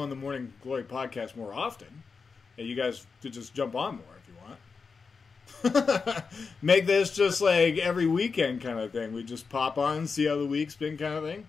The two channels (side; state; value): right; quieter; 5.0 dB